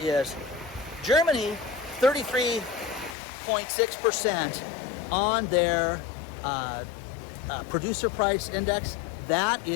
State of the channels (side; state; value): right; drops out; at 3.2 s